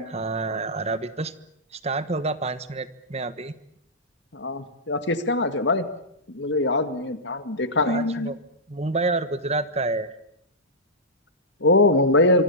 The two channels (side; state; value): both; normal; correlation -0.13